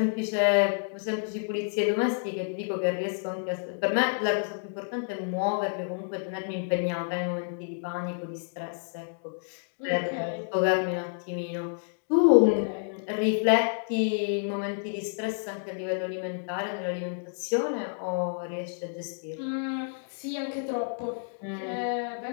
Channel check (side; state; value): right; silent; digital silence